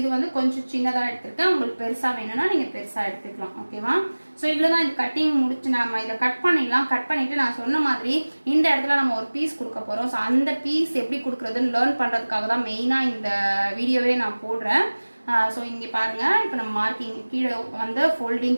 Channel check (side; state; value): both; inverted; correlation -1.00